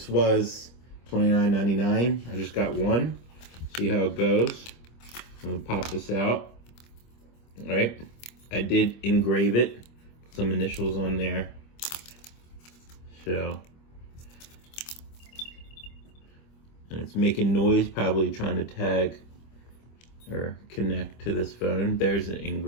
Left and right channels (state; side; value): late; right; 25 ms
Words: was $29.99. I just got one. See how it goes. I'm gonna pop this out. All right. I did engrave it. Put some initials on there. So, and it's making noise, probably trying to tag or connect to this phone. There's the